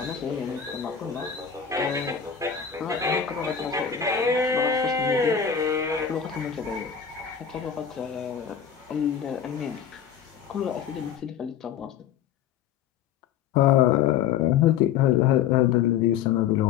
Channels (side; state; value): right; quieter; 8.3 dB